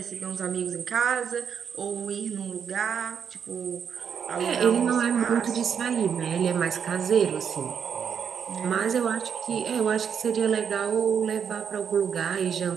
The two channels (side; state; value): left; quieter; 7.4 dB